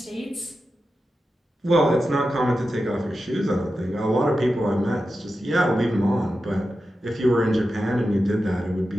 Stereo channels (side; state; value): both; normal; correlation 0.91